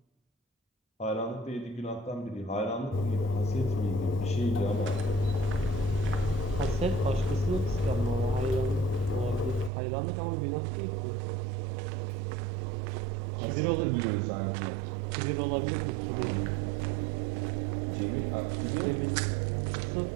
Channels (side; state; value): left; drops out; at 9.7 s